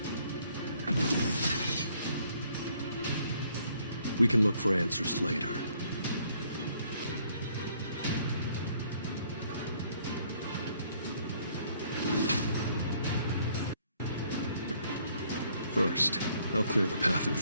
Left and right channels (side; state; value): both; inverted; correlation -0.65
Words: We can look for answers later. First, I'll clear the path in